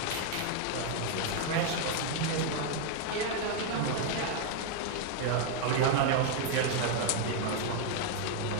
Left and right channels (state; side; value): different; both; correlation 0.00